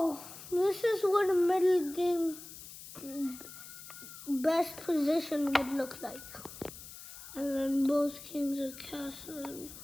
this is what a middle game best position would look like. And then both kings are castled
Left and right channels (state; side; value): noise; left; hiss, 14 dB below the sound